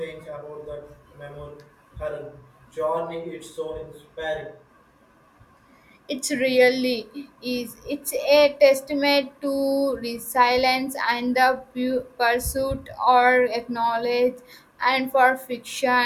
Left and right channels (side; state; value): both; identical; correlation 1.00